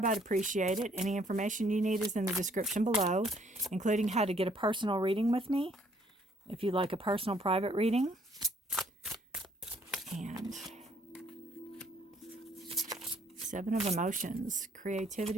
I'd appreciate it. Any information you need is in the description below, including how to get a personal reading with me, if you'd like a personal private reading. And 7 of Emotions,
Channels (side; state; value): both; normal; correlation 0.64